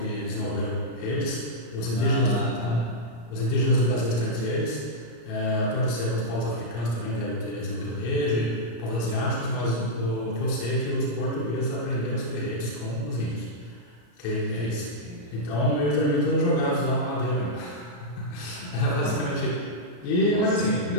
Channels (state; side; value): late; right; 34 ms